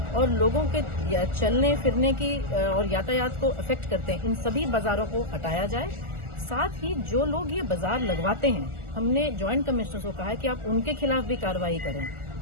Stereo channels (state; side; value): late; left; 1.4 ms